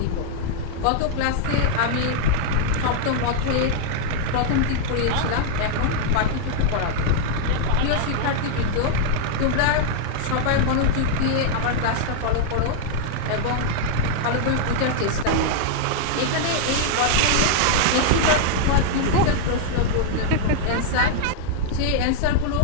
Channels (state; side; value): different; both; correlation -0.01